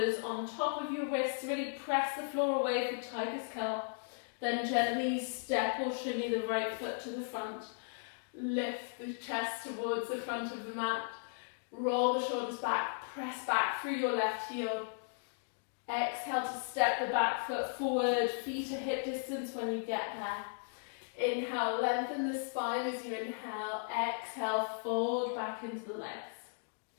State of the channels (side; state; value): right; silent; digital silence